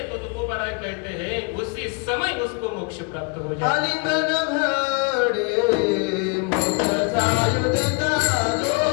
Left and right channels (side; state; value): right; quieter; 34.2 dB